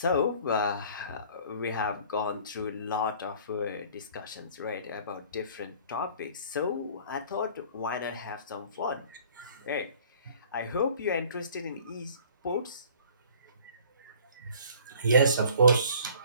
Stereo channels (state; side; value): inverted; both; correlation -0.52